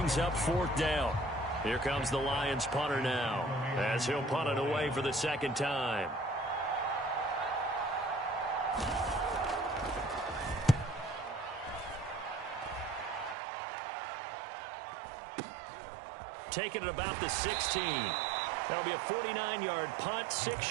up 4th down. Here comes the Lions punter now as he'll punt it away for the second time. Taking it about the 16. That'll be a 49-yard punt,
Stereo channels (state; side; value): drops out; left; at 13.4 s